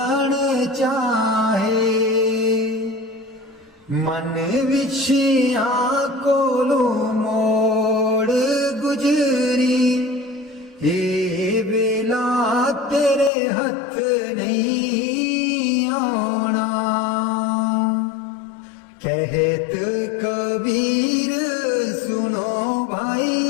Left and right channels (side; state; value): right; drops out; at 13.3 s